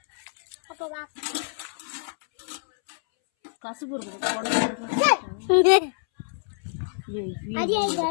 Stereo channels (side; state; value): right; silent; 61 dB below the other